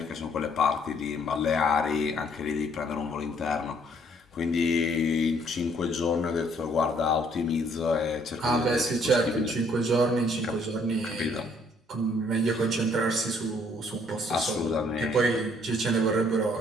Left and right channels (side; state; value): both; normal; correlation 0.64